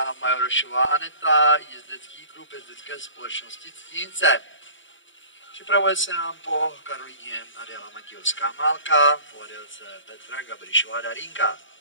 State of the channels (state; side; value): late; right; 0.55 ms